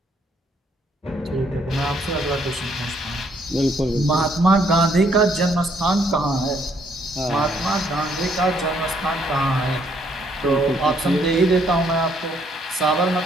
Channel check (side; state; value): both; normal; correlation 0.68